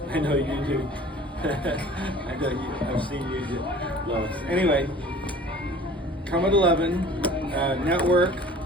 I know you do. I know I've seen you do, Lois. Anyway, come at 11, network,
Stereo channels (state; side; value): normal; both; correlation 0.46